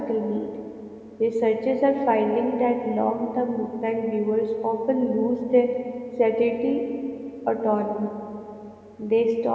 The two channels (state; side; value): identical; both; correlation 1.00